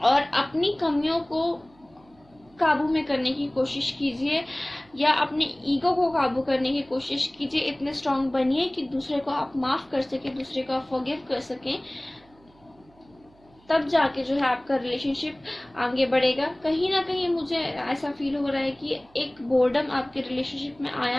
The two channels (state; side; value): noise; right; hum, 29 dB below the sound